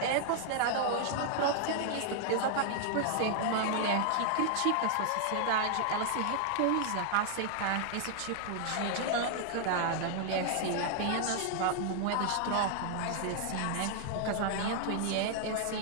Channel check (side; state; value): both; different; correlation -0.01